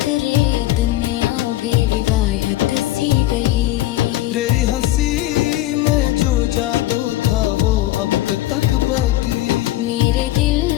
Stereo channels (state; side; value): quieter; right; 15.7 dB